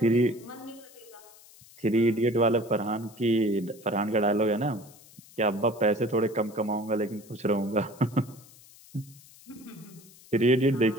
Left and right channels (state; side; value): noise; left; hiss, 23 dB below the sound